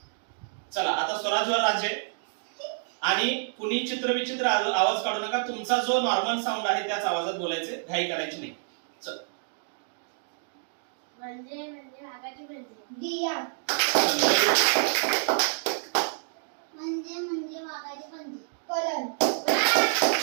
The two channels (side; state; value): left; silent; digital silence